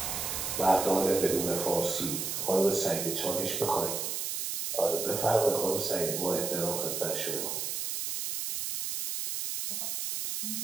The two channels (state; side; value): noise; right; hiss, 3 dB below the sound